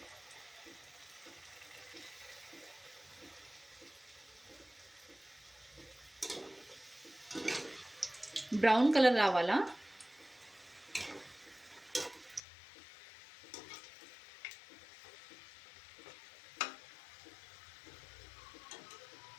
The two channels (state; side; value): drops out; right; at 12.4 s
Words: బ్రౌన్ కలర్ రావాలా.